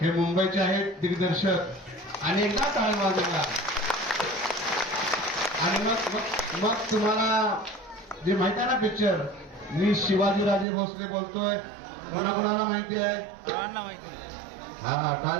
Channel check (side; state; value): left; drops out; at 10.7 s